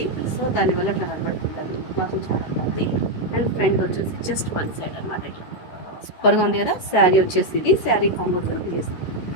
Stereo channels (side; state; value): right; late; 13 ms